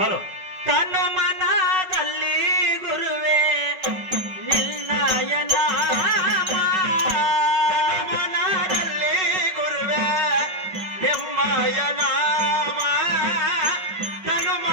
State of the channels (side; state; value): left; late; 5.3 ms